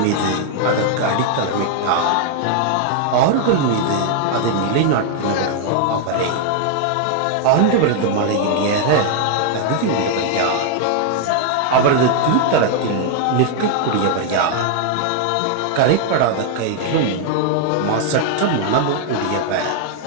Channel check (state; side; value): different; both; correlation 0.00